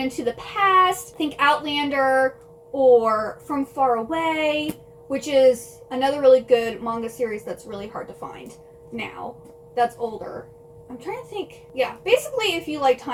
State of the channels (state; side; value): identical; both; correlation 1.00